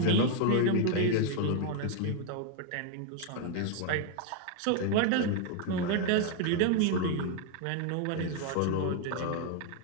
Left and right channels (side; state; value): both; different; correlation 0.00